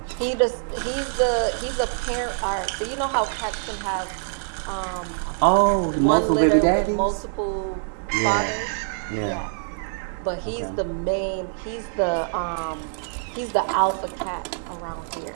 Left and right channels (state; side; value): silent; left; digital silence